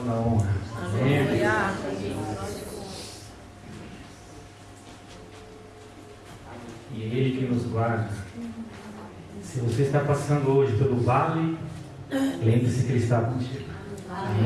a honra. Amém. E é Ele que nos guarda. Se você está passando hoje pelo vale, lembre-se que Ele está contigo.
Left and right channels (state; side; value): identical; both; correlation 1.00